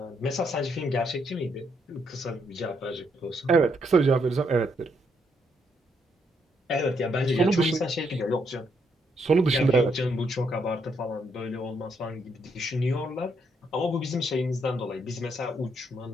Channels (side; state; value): both; normal; correlation 0.75